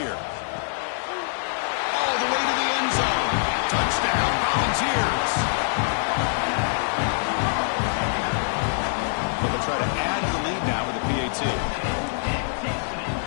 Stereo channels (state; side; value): silent; right; digital silence